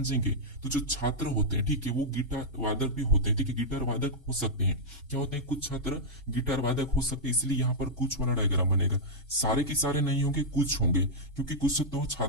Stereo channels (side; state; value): both; normal; correlation -0.07